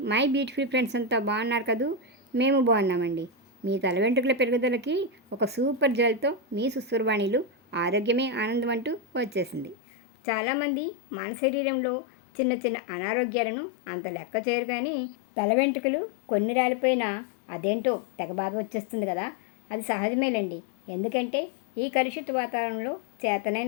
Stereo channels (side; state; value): right; drops out; at 9.8 s